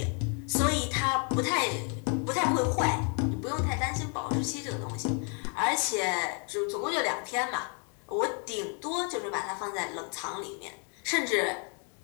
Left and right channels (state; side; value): quieter; right; 39.0 dB